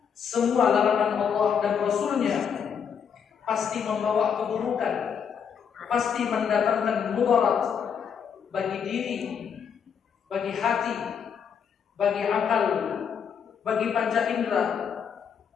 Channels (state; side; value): quieter; right; 7.2 dB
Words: Semua larangan Allah dan Rasul-Nya pasti membawa keburukan, pasti mendatangkan mudarat bagi diri, bagi hati, bagi akal, bagi panca indera,